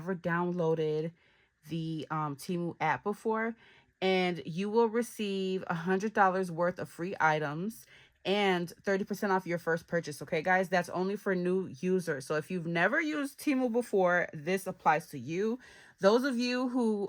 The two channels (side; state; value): both; identical; correlation 1.00